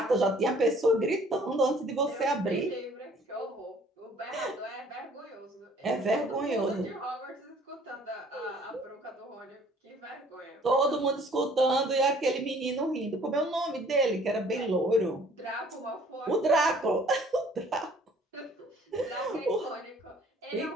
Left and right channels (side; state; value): both; normal; correlation 0.56